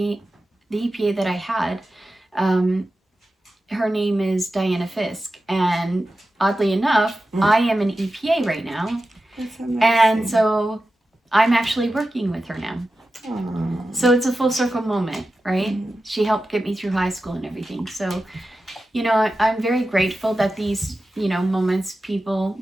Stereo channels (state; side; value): normal; both; correlation 0.93